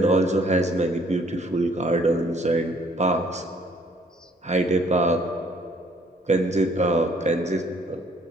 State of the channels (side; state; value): both; normal; correlation 0.62